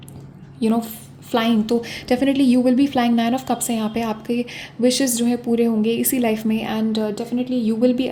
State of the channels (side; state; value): both; identical; correlation 1.00